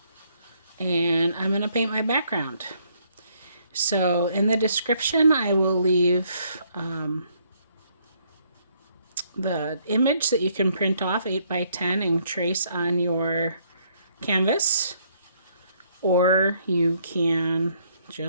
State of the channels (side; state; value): both; inverted; correlation -0.69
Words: and I'm going to paint my background. So in the description I will leave the image that you can print off 8x10 and trace on your canvas, or you can